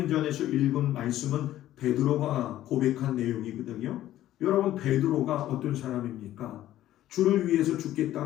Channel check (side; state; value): right; quieter; 13.5 dB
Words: 읽은 말씀은 베드로가 고백한 내용이거든요. 여러분, 베드로가 어떤 사람입니까? 주를 위해서